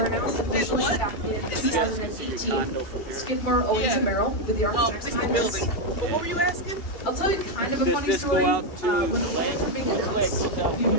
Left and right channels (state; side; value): late; right; 2.8 ms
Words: announced officially what? back in you guys can see your 2018. condo from here. Skidmore, Owens Yeah. and Merrill with the Oh, architects it's the behind building. this. What were you asking? I'll tell you kind of a Does funny this story. go out to When the Lake? plans were being announced a few